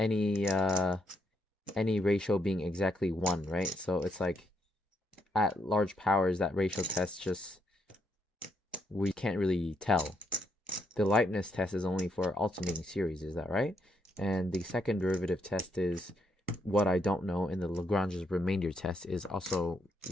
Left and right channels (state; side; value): normal; both; correlation 0.76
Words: ratio being exactly 1, right? So it's like at large powers, that ratio test we can't really tell. The Leibniz test is only for alternating series, is that right? And the second derivative test is what I don't know, and the Lagrange's remainder test is also